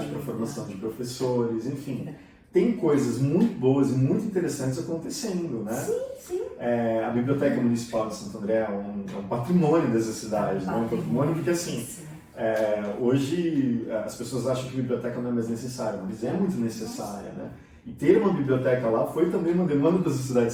para formação de professores, enfim. tem coisas muito boas e muito interessantes acontecendo, né? Sim, sim. A Biblioteca Municipal de Santo André é um patrimônio dessa cidade, né? Um patrimônio porque, assim, hoje as pessoas acham que a biblioteca não é mais necessária, mas é muito necessária, né? E ter uma biblioteca lá foi também uma demanda da sociedade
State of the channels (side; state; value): both; identical; correlation 1.00